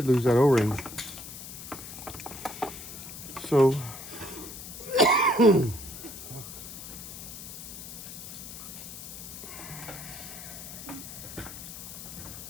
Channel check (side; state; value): left; noise; hiss, 11 dB below the sound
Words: that O-ring. So